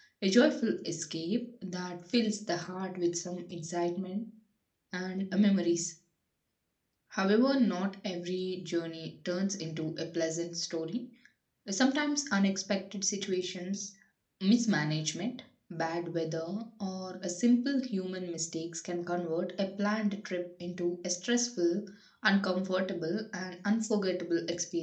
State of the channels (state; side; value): identical; both; correlation 1.00